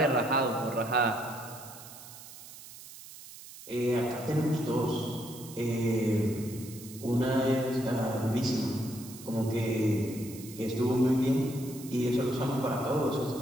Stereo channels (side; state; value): right; noise; hiss, 16 dB below the sound